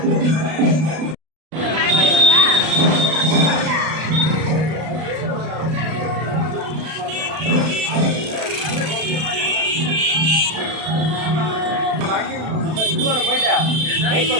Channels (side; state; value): left; late; 32 ms